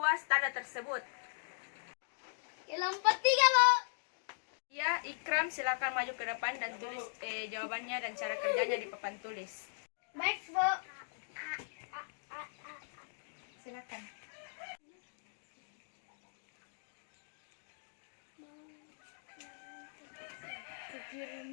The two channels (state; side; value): silent; right; digital silence